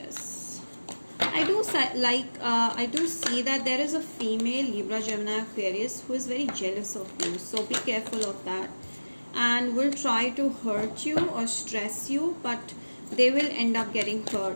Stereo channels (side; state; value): both; inverted; correlation -1.00